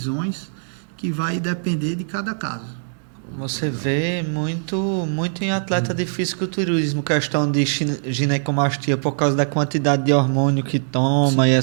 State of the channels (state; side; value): silent; left; digital silence